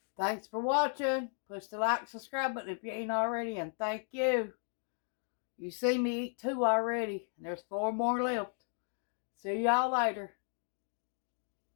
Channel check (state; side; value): silent; right; 54 dB below the other